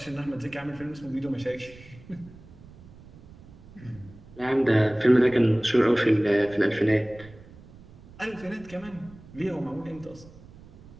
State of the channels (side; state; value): right; noise; rumble, 21 dB below the sound